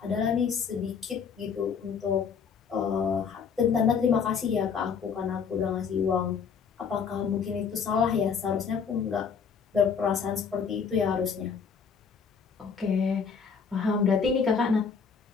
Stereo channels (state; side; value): quieter; right; 6.3 dB